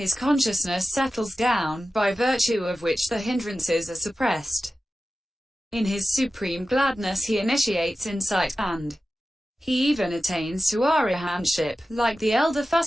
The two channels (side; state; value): both; normal; correlation 0.94